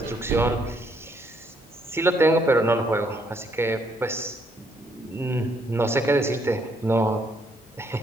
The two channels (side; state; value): both; normal; correlation 0.71